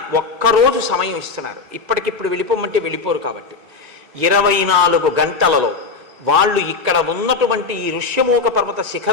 ఒక్కరోజు సమయం ఇస్తున్నారు, ఇప్పటికిప్పుడు వెళ్ళిపోమంటే వెళ్ళిపోరు. కాబట్టి 24 గంటలలో వాళ్ళు ఇక్కడ ఉన్నటువంటి ఈ ఋష్యమూక పర్వత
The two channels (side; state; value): right; quieter; 4.5 dB